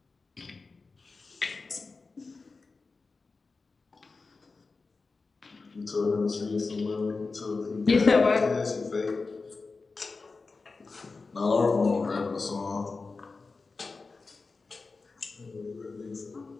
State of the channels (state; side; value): quieter; right; 4.1 dB